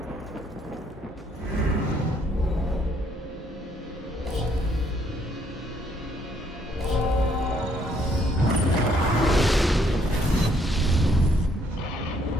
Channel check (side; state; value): both; normal; correlation 0.68